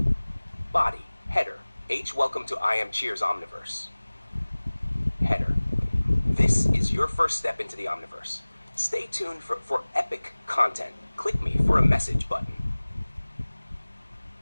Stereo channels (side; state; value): both; inverted; correlation -1.00